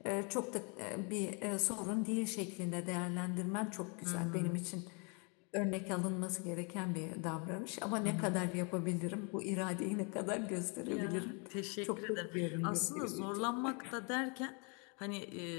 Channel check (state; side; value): quieter; right; 34.3 dB